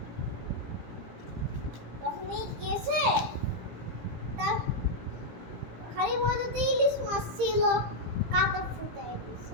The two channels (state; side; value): late; left; 18 ms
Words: তখনই গেছে, তার হাড়ির মধ্যে ইলিশ মাছ ছিল, কাটা ফুটাই